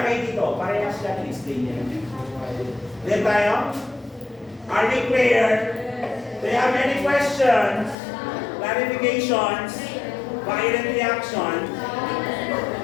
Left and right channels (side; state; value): right; drops out; at 8.0 s